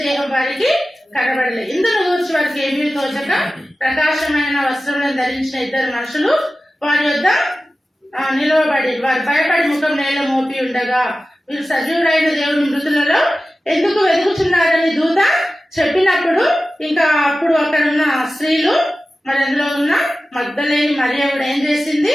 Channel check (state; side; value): normal; both; correlation 0.95